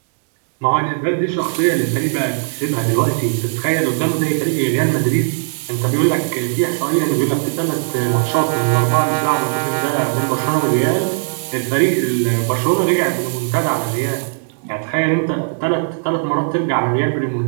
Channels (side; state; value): left; silent; digital silence